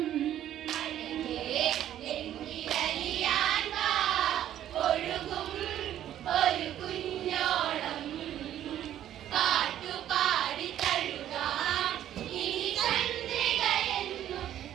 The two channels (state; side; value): quieter; left; 11.6 dB